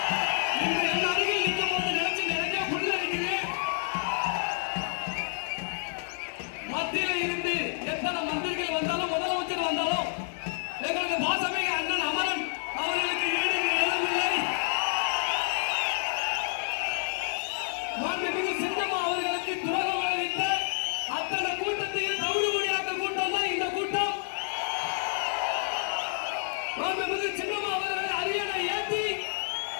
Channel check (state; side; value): silent; right; digital silence